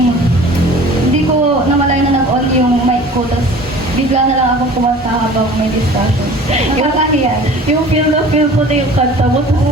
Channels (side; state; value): both; normal; correlation 0.44